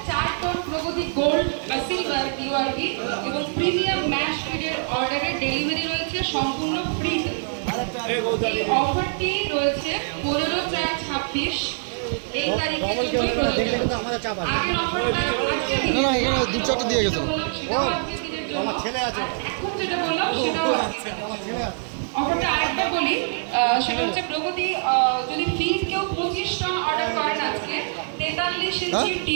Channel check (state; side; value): silent; left; digital silence